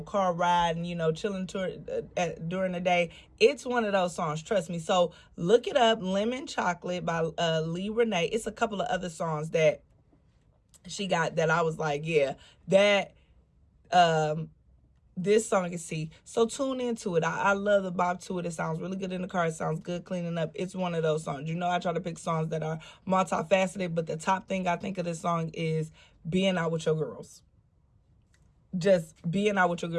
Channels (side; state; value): both; identical; correlation 1.00